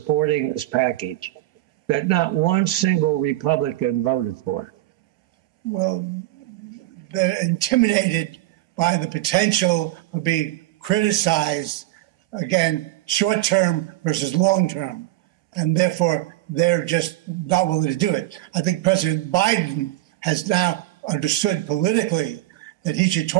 this package, that not one single Republican voted for it? Well, they're intimidated by the potential of being criticized, again, short-term versus long-term, and therefore they're just not willing to do it. I think President Biden has now understood politically that he should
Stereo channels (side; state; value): left; quieter; 16.4 dB